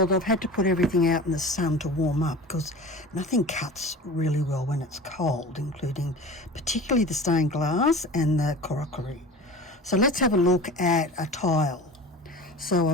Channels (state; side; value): normal; both; correlation 0.36